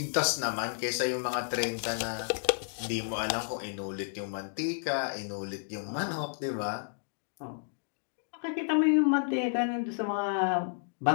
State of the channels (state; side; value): silent; right; digital silence